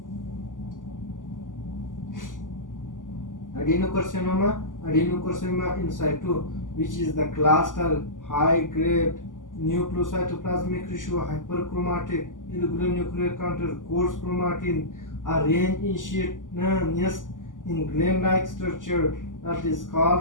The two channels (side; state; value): right; late; 0.88 ms